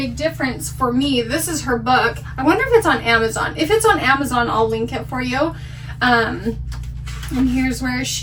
difference for me. This is her book. I wonder if it's on Amazon. If it's on Amazon, I'll link it for you. And here's where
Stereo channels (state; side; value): identical; both; correlation 1.00